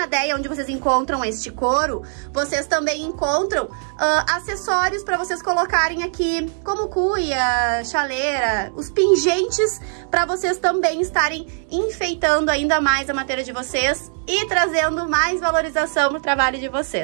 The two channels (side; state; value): left; silent; 61 dB below the other